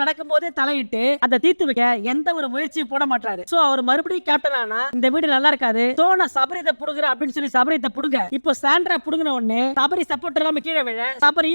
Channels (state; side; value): inverted; both; correlation -1.00